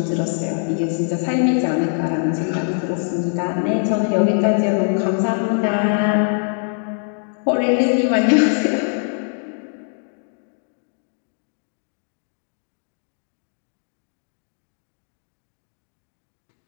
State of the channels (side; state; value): right; silent; 61 dB below the other